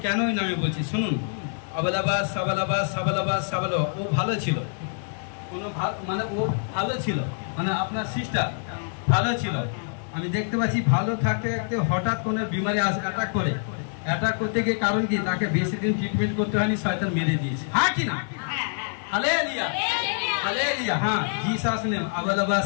কেন ওই নামে বলছি, শুনুন। আবালাবাস সাবালাবাস সাবালাবাস সাবালো, ও ভালো ছিল, কোনো মানে ও ভালো ছিল, মানে আপনার সিস্টার ভালো ছিল। আমি দেখতে পাচ্ছি ভালো থাকতে থাকতে হঠাৎ কোনো বিমারি অ্যাটাক করে, অ্যাটাক করতে গিয়ে কারণ কি তাকে বেশি দিন ট্রিটমেন্ট করতে হয়নি, শয়তান মেরে দিয়েছে। হ্যাঁ কি না? Hallelujah hallelujah. হ্যাঁ, জিসাস নেম আবালাবা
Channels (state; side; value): silent; right; 60 dB below the other